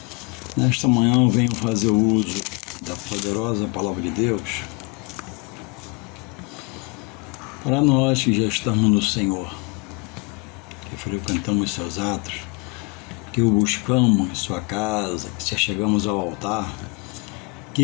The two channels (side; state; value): right; quieter; 29.6 dB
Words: Nesta manhã eu venho fazer uso da poderosa Palavra de Deus para nós que já estamos no Senhor, que frequentamos seus atos, que o buscamos em sua casa, que chegamos ao altar,